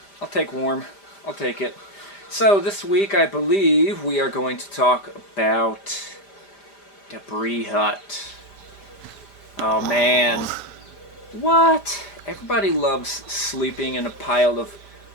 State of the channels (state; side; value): late; right; 5.0 ms